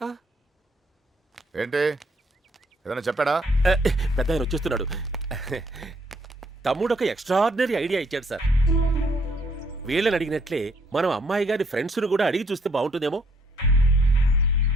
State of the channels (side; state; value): both; normal; correlation 0.68